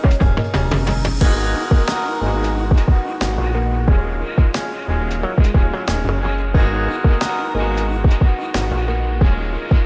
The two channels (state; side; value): identical; both; correlation 1.00